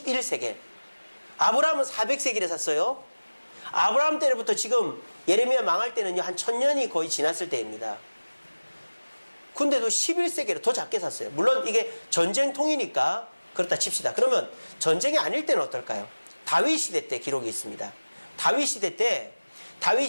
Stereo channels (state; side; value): inverted; both; correlation -1.00